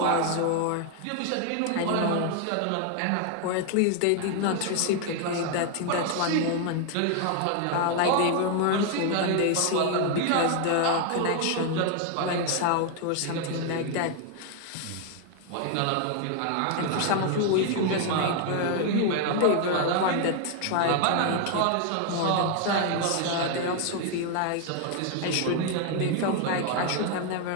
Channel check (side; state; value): both; different; correlation 0.00